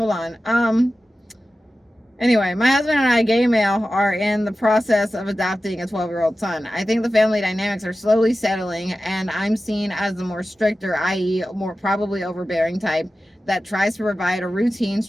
on. Anyway, my husband and I, gay male, are in the process of adopting a 12-year-old son. I think the family dynamics are slowly settling, and I'm seen as the more stricter, i.e. more probably overbearing type that tries to provide a routine,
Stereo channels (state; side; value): normal; both; correlation 0.94